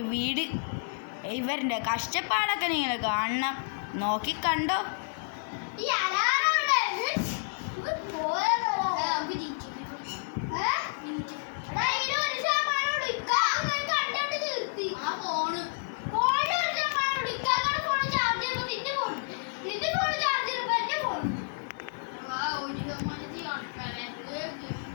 വീട്. ഇവരുടെ കഷ്ടപ്പാടൊക്കെ നിങ്ങൾ കാണണം. നോക്കിക്കണ്ടോ.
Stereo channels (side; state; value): right; silent; digital silence